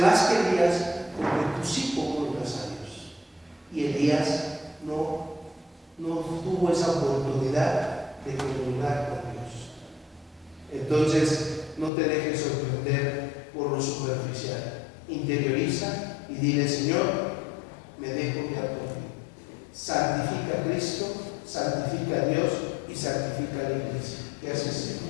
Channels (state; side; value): drops out; right; at 11.9 s